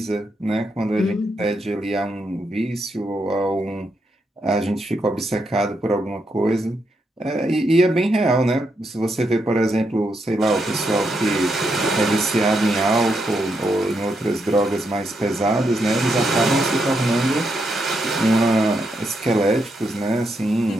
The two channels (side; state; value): both; normal; correlation 0.81